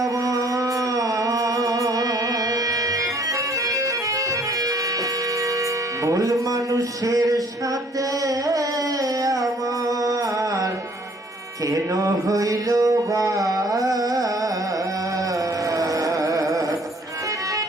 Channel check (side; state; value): both; normal; correlation 0.59